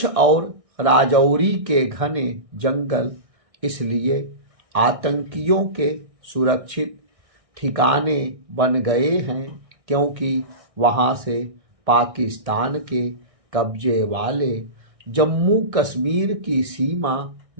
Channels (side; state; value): left; late; 1.6 ms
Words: और राजौरी के घने जंगल इसलिए आतंकियों के सुरक्षित ठिकाने बन गए हैं क्योंकि वहां से पाकिस्तान के कब्जे वाले जम्मू कश्मीर की सीमा